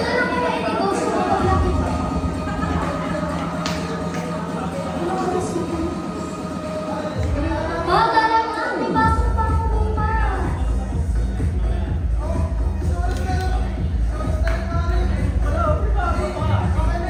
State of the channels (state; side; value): identical; both; correlation 1.00